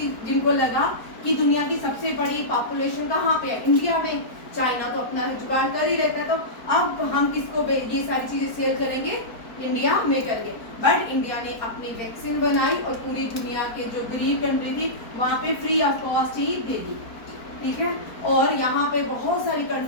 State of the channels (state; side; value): late; right; 4.4 ms